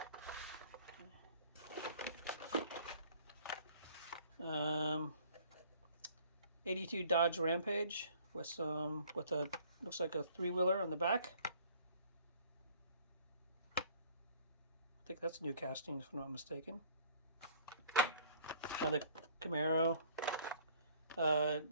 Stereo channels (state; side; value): inverted; both; correlation -0.55